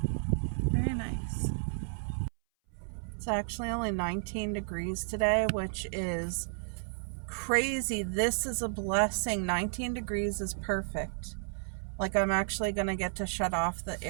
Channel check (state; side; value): silent; left; 56 dB below the other